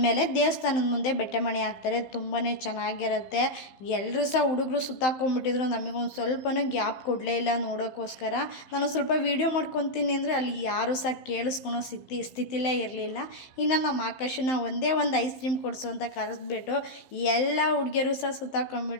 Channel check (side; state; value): right; late; 16 ms